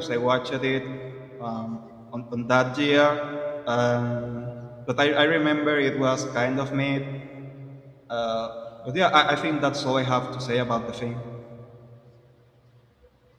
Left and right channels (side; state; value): both; identical; correlation 1.00